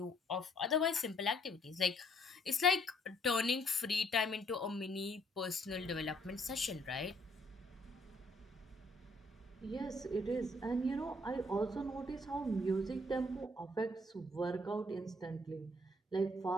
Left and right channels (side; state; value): both; normal; correlation 0.66